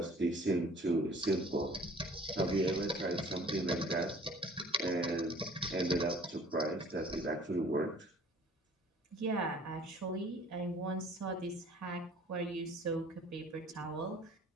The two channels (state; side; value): normal; both; correlation 0.52